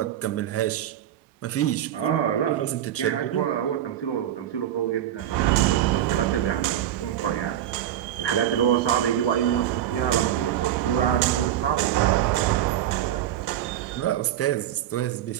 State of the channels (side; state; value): left; quieter; 11.4 dB